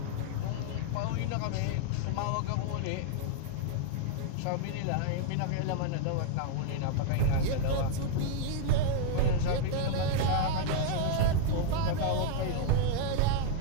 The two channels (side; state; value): both; different; correlation 0.00